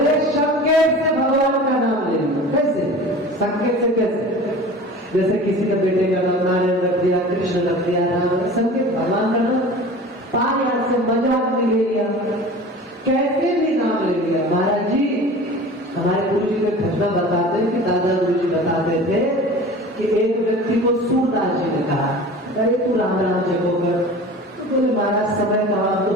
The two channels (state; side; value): normal; both; correlation 0.39